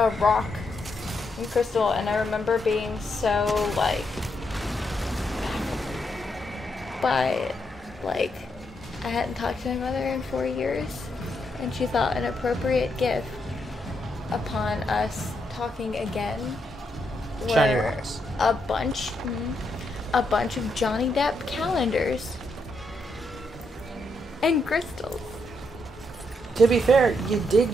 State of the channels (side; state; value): both; normal; correlation 0.79